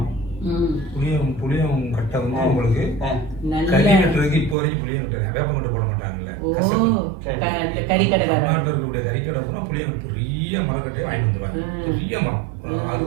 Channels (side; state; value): left; drops out; at 4.5 s